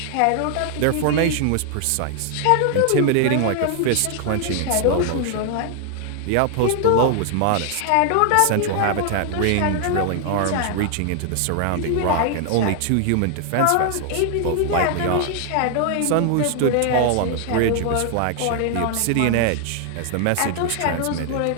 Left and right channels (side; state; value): both; different; correlation 0.00